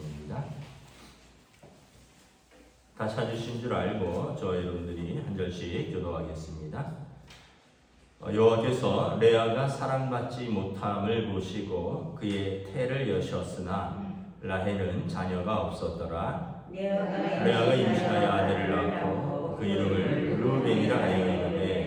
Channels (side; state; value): both; identical; correlation 1.00